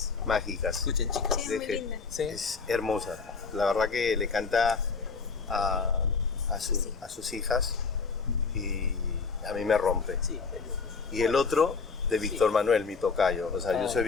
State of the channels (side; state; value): right; quieter; 4.8 dB